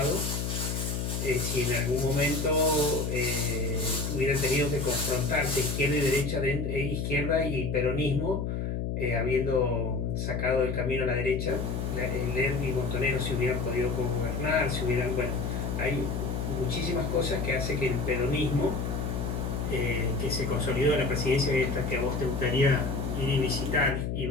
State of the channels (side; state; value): left; noise; hum, 2 dB below the sound